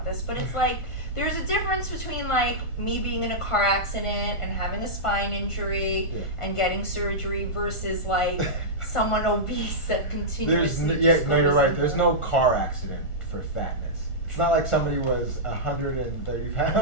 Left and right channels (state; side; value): late; right; 1.4 ms